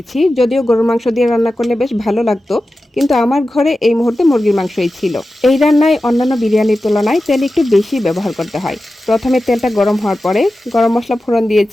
যদিও গরুর মাংস দিয়ে রান্না করলে বেশ ভালো লাগতো, কিন্তু আমার ঘরে এই মুহূর্তে মুরগির মাংসই ছিল। এই রান্নায় অন্যান্য বিরিয়ানির তুলনায় তেল একটু বেশি ব্যবহার করতে হয়। প্রথমে তেলটা গরম হওয়ার পরে গরম মশলা ফোড়ন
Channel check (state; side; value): normal; both; correlation 0.93